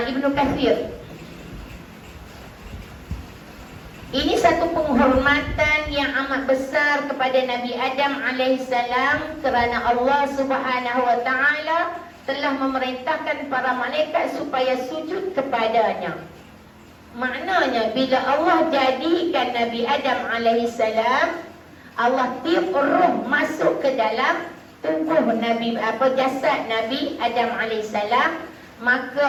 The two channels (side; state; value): both; identical; correlation 1.00